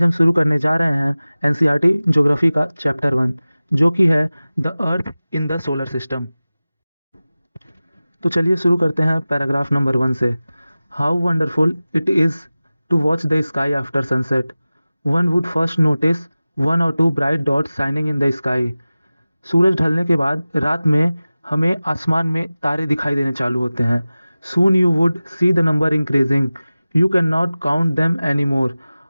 हम शुरू करने जा रहे हैं एनसीईआरटी ज्योग्राफी का चैप्टर 1, जो कि है the earth in the solar system. तो चलिए शुरू करते हैं पैराग्राफ नंबर 1 से। How wonderful it is to watch the sky after sunset. One would first notice one और two bright dots shining in the sky. सूरज ढलने के बाद रात में हमें आसमान में तारे दिखाई देने चालू होते हैं। Soon you would see the number increasing, you can not count them any more.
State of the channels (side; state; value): both; inverted; correlation -0.97